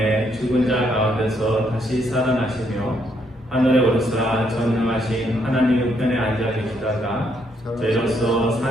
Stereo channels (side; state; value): both; normal; correlation 0.73